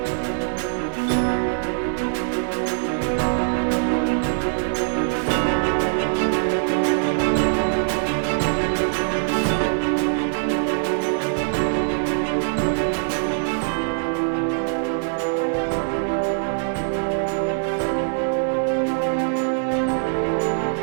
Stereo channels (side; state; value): left; silent; digital silence